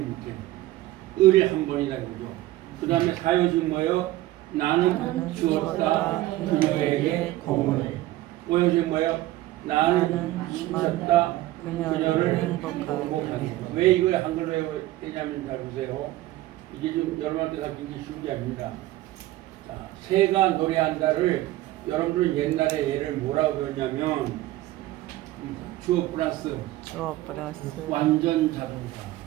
못해요. 을이 한 번이다 이거죠. 그 다음에 사효식 뭐예요? 나는 주었다 그녀에게 공을. 오효식 뭐예요? 나는 주었다 그녀를 행복하게. 왜 이걸 한글로 해야 되냐면 잘 보세요. 이게 좀 여러분한테 가르친 게 쉬운 게 아닙니다. 자, 새가 노래한다를 여러분들은 옛날에 얘를 뭐라고 배웠냐면 주어 플러스 완전 자동사.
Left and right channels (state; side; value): quieter; left; 16.3 dB